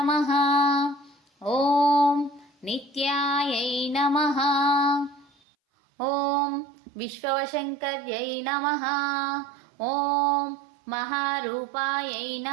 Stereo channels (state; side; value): drops out; left; at 5.3 s